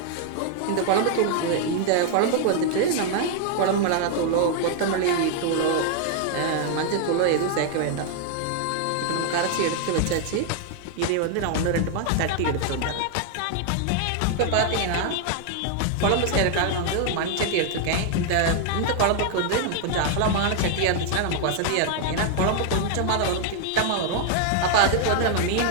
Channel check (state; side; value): different; both; correlation 0.00